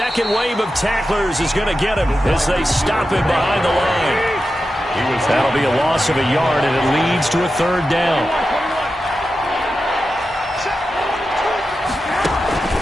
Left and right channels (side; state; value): both; normal; correlation 0.91